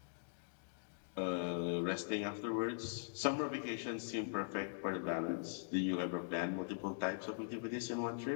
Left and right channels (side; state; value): right; silent; digital silence